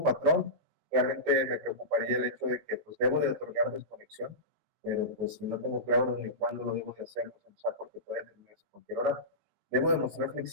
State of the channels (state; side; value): late; left; 19 ms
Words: patrón realmente me preocuparía el hecho de que pues debo de otorgar desconexión, pero pues si no tengo claro ni cuándo lo debo de hacer, pues empezar porque puede terminarse a cualquier hora. Debo demostrar